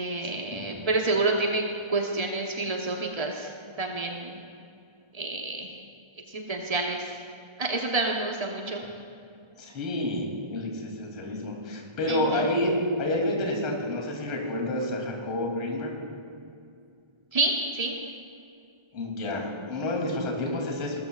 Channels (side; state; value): left; late; 1.3 ms